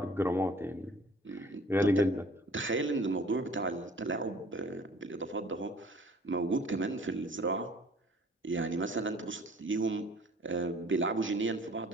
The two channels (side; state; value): both; normal; correlation 0.52